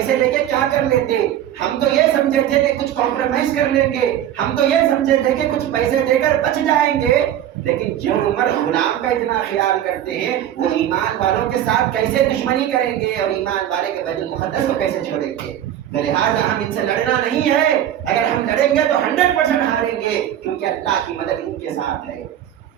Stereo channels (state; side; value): quieter; left; 11.3 dB